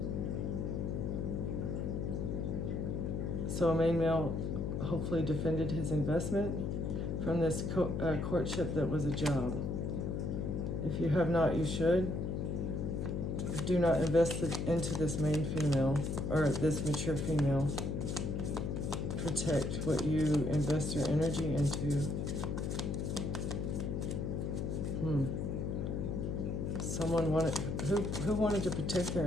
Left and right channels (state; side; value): noise; left; hum, 1 dB below the sound